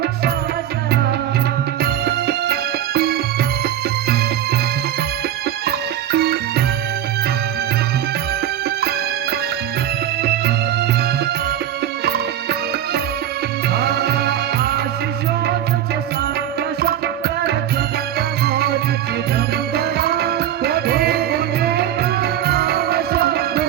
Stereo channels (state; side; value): quieter; left; 11.1 dB